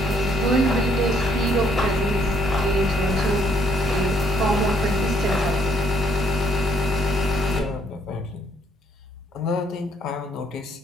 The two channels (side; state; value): both; normal; correlation 0.68